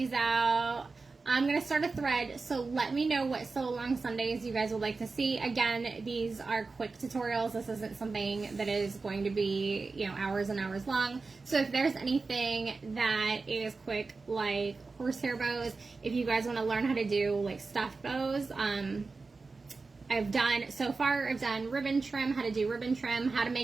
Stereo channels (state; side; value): quieter; left; 4.1 dB